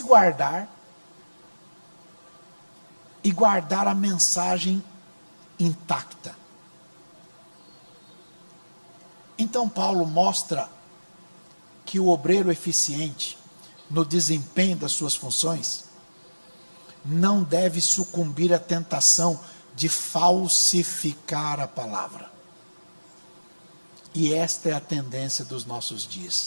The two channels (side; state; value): both; inverted; correlation -1.00